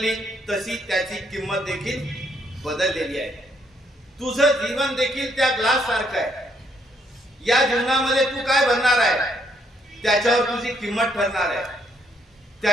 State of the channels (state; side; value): normal; both; correlation 0.71